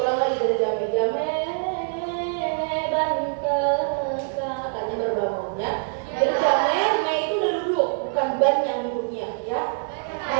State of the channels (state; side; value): silent; left; 62 dB below the other